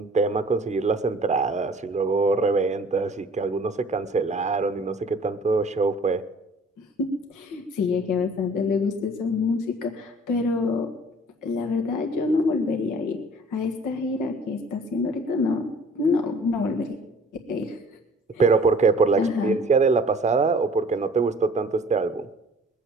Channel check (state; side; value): normal; both; correlation 0.51